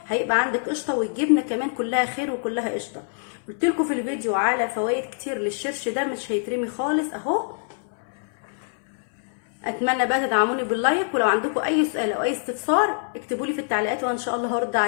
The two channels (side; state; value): right; silent; 62 dB below the other